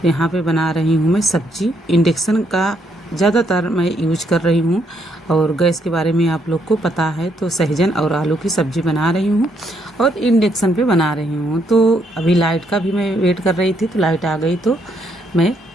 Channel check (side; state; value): both; normal; correlation 0.73